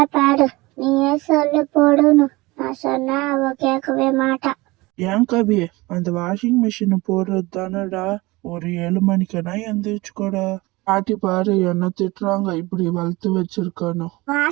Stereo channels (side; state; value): left; quieter; 22.0 dB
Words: பாடு, நீயே சொல்லு போடணும். நான் சொன்னா அவ கேட்கவே மாட்டா. ஏன் கவி, அந்த வாஷிங் மிஷினை போடுறது தானடா. ஒரு 7 மணிக்குனா எந்திரிச்சுக்கோடா. பாட்டி பாரு என்ன திட்டுறாங்க, இப்படி வளர்த்து வச்சிருக்கணும்.